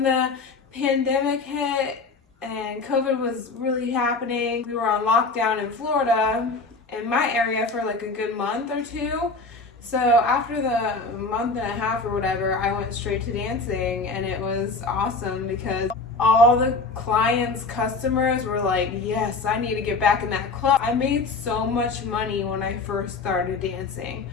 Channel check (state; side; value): quieter; right; 3.9 dB